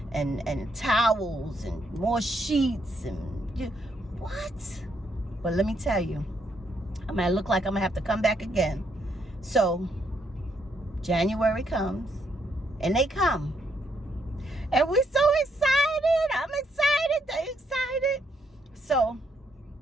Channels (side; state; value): both; normal; correlation 0.75